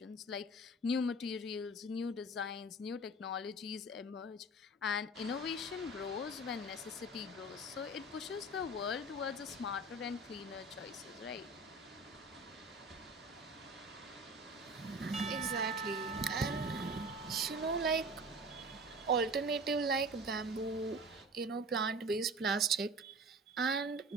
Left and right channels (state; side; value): normal; both; correlation 0.39